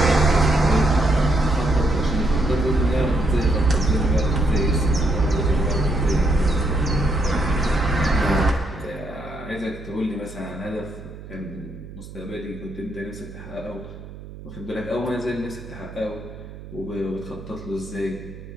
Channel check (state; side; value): noise; right; hum, 15 dB below the sound